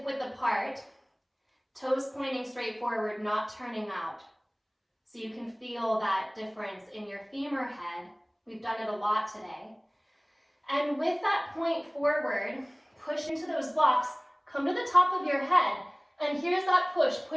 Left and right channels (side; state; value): both; identical; correlation 1.00